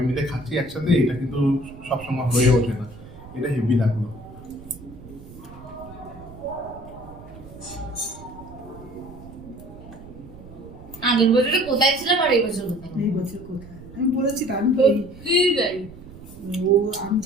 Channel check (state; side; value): noise; right; rumble, 17 dB below the sound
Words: মিলে খাচ্ছি একসাথে, এটা কিন্তু সবসময় হয়ে ওঠে না। এটা হেভি লাগলো। আগের বছরে কোথায় ছিলাম আর এই বছর কোথায় এই বছর কোথায়? আমি বলেছি তো, আমি সত্যি তাই ও আমি